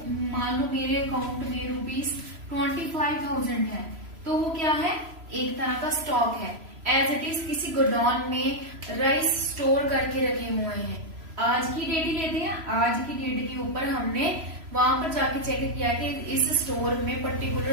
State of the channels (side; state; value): left; late; 3.0 ms